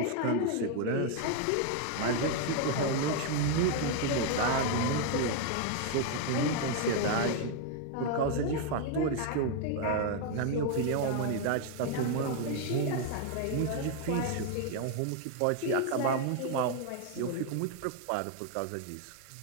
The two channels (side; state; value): both; different; correlation 0.01